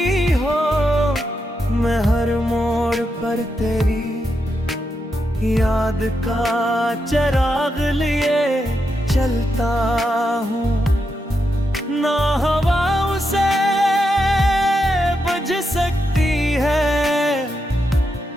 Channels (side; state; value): both; normal; correlation 0.84